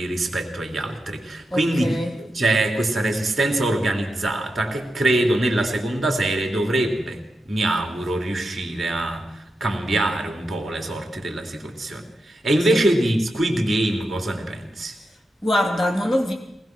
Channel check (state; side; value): normal; both; correlation 0.88